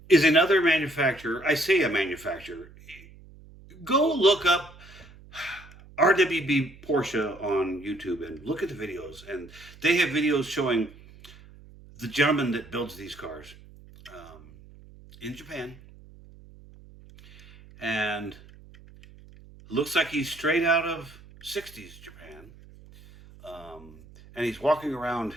Is another manufacturer. I say a manufacturer. Go look up RWB Porsche on YouTube and look at the videos. And they have videos showing the gentleman that builds these cars in Japan. And looks like he's straight out of 60s Japan. And he's walking around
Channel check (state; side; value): noise; right; hum, 21 dB below the sound